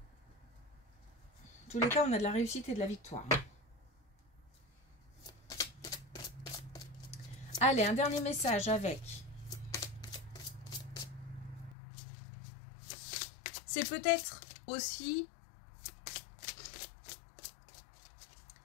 tous les cas, on a de la réussite et de la victoire. Allez, un dernier message avec. C'est peut-être aussi...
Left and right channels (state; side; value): drops out; right; at 11.8 s